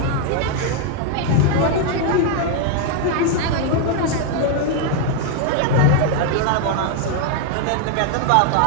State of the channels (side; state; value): both; different; correlation 0.00